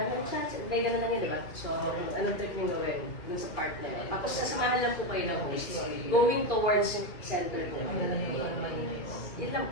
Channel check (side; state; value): right; late; 2.5 ms